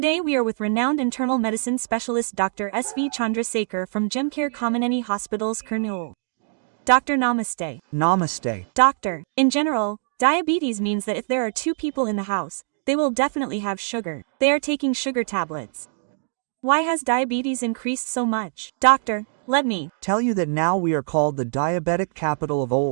we are with renowned internal medicine specialist Dr. S.V. Chandrasekhar from Gemcare Kameneni Hospitals, Kurnool. Doctor, namaste. Namaste. Doctor, in general, diabetes means that if there are two people in the house, they will definitely have sugar. They are taking sugar tablets. Why has diabetes increased so much? Doctor, let me Tell you that now we are called the diabetic capital of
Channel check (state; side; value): silent; left; digital silence